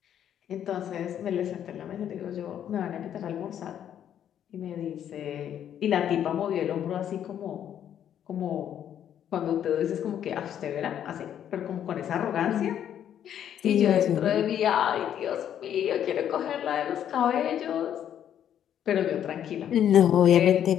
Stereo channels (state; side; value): quieter; right; 9.9 dB